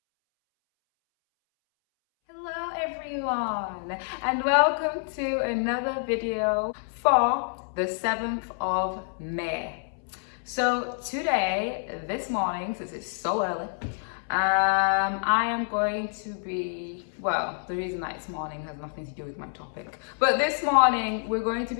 Hello everyone, and welcome to another video for the 7th of May. So today, this morning, since it's so early, I am going to be, well, the reason that it's morning has nothing to do with my topic, but this morning we're going to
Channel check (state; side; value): silent; right; 60 dB below the other